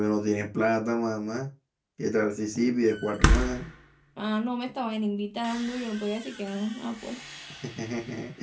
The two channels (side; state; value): both; identical; correlation 1.00